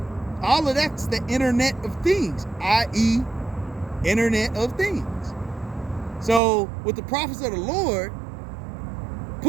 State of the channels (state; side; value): drops out; left; at 6.4 s